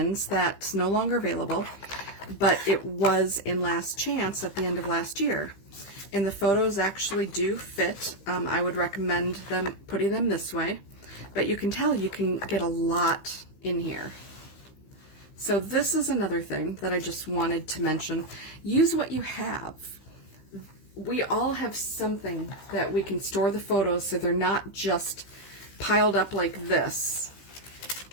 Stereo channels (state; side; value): late; right; 16 ms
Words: that's no longer available. but it was in Last Chance at the end of last year. And the photos actually do fit. I would recommend them putting them this way, but you can tell you can get a lot in here. So this is another thing that I just wanted to mention. Use what you have. We all have something that we can store the photos so they're not just piled up like this.